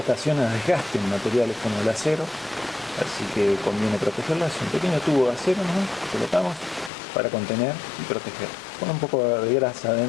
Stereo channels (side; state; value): right; drops out; at 6.9 s